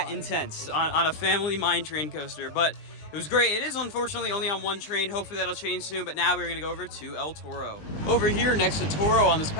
ride. intense on a family Mine Train coaster, but it was great. It is unfortunately only on 1 train. Hopefully that'll change soon, but now we're gonna go over to El Toro. Over here next to Toro on this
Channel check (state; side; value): late; right; 19 ms